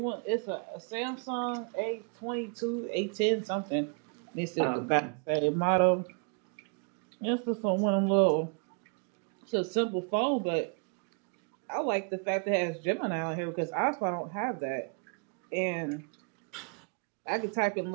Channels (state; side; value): quieter; left; 39.6 dB